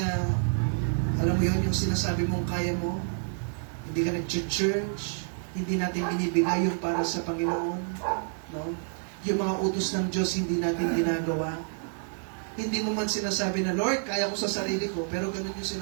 alam mo yun, yung sinasabi mong kaya mo, hindi ka nag-church, hindi natin binibigay yung para sa Panginoon. No? Yung mga utos ng Diyos, hindi natin ginagawa. Hindi mo man sinasabi na, Lord, kaya ko sa sarili ko, pero ganun yung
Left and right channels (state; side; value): silent; left; digital silence